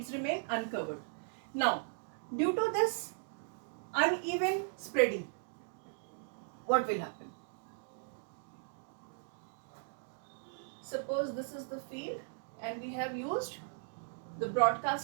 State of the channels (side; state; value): left; silent; digital silence